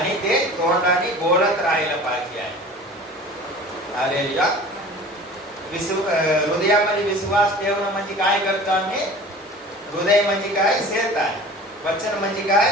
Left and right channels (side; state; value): both; normal; correlation 0.42